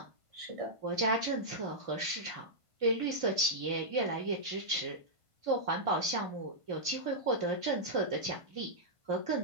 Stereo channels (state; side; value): late; left; 1.5 ms